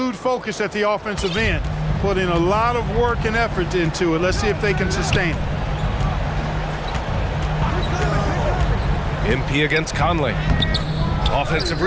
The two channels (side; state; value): both; identical; correlation 1.00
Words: focus at the offensive end, putting a lot of work and effort into it. Let's see if they can sustain it. MP against Conley. Offensive